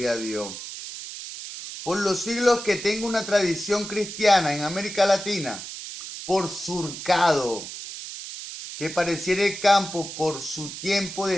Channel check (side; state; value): right; noise; hiss, 10 dB below the sound